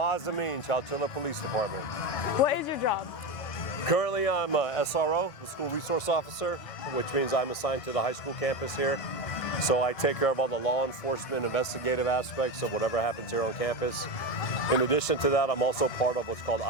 Chowchilla Police Department. What is your job? Currently I'm a SRO, the School Resource Officer, which means I'm assigned to the high school campus here. So I take care of all the law enforcement, investigative aspects of whatever happens here on campus. In addition to that, I'm also part of what's called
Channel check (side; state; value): both; normal; correlation 0.18